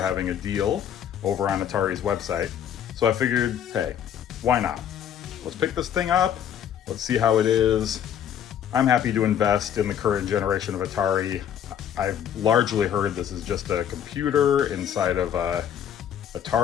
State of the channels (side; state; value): right; quieter; 9.4 dB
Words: a deal over on Atari's website. So I figured, hey, why not? Let's pick this thing up. Let's see how it is. I'm happy to invest in the current generation of Atari. I've largely heard this is just a computer inside of a